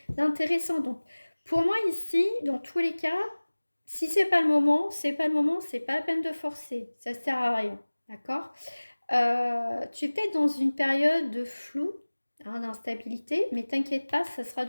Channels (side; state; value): both; inverted; correlation -1.00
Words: d'intéressant. Donc, pour moi, ici, dans tous les cas, si c'est pas le moment, c'est pas le moment, c'est pas la peine de forcer. Ça sert à rien. D'accord? Tu es peut-être dans une période de flou, hein, d'instabilité, mais t'inquiète pas, ça sera